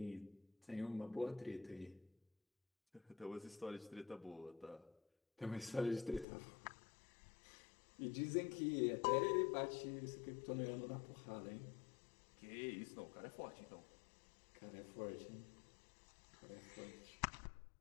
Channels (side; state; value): right; drops out; at 6.2 s